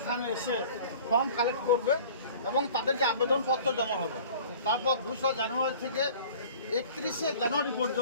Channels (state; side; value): inverted; both; correlation -0.46